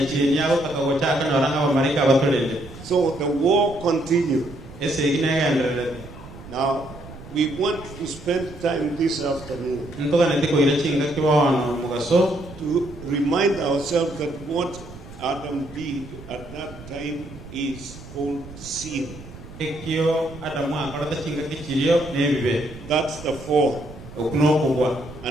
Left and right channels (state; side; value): noise; right; rumble, 16 dB below the sound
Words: So the war continues. Now, we want to spend time this afternoon to remind ourselves that what Adam did at that time is called sin. That's the fall.